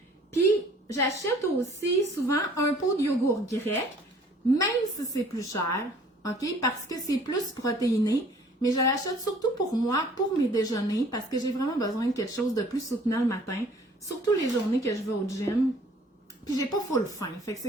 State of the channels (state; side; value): normal; both; correlation 0.54